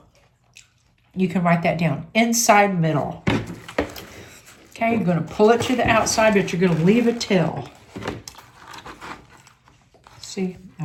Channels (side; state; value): both; identical; correlation 1.00